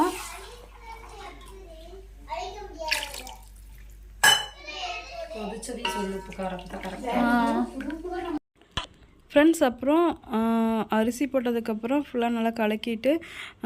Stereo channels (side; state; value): both; identical; correlation 1.00